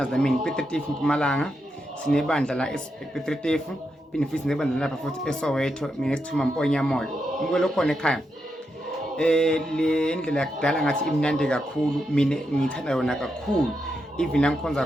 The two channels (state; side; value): normal; both; correlation 0.84